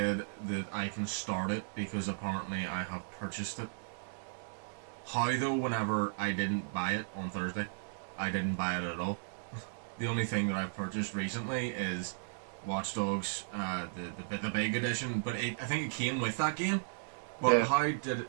that I can start it because apparently I have purchased it. How though, whenever I didn't buy it on Thursday, I didn't buy it at all. The only thing that I've purchased recently is Watch Dogs, the big edition. But I think it came with that game. But Yeah. how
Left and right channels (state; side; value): silent; left; digital silence